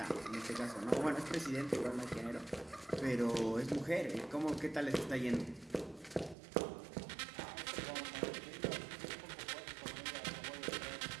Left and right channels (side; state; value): left; drops out; at 6.4 s